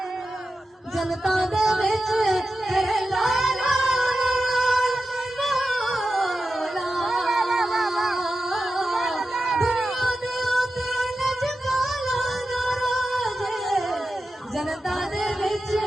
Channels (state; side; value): normal; both; correlation 0.92